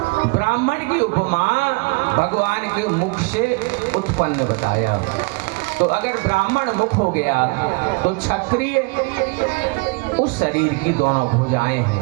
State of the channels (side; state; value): left; quieter; 29.3 dB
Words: ब्राह्मण की उपमा भगवान के मुख से उत्पन्न बताया। तो अगर ब्राह्मण मुख हो गया तो क्षत्रिय उस शरीर की दोनों भुजाएं